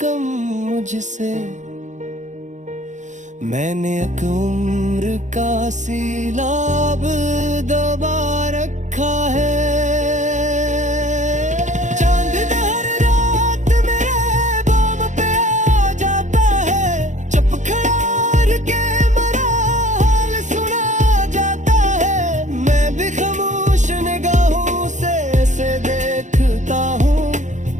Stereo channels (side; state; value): left; late; 0.35 ms